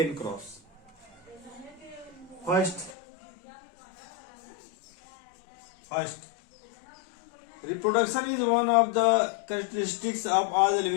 cross. First, reproduction is one of the characteristics of all the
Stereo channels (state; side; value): drops out; right; at 3.0 s